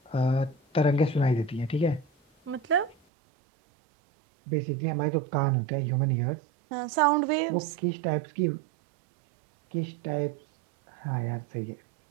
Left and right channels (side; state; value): left; drops out; at 3.0 s